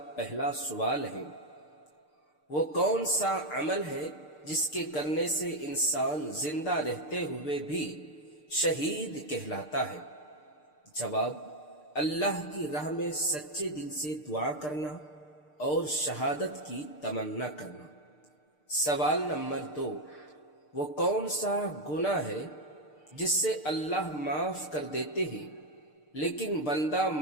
پہلا سوال ہے، وہ کون سا عمل ہے جس کے کرنے سے انسان زندہ رہتے ہوئے بھی شہید کہلاتا ہے؟ جواب: اللہ کی راہ میں سچے دل سے دعا کرنا اور شہادت کی تمنا کرنا۔ سوال نمبر 2، وہ کون سا گناہ ہے جس سے اللہ معاف کر دیتے ہیں لیکن بندہ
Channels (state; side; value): late; right; 6.7 ms